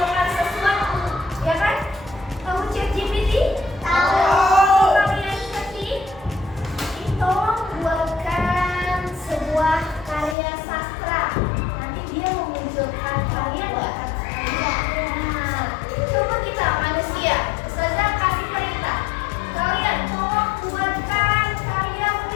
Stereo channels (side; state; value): right; drops out; at 10.4 s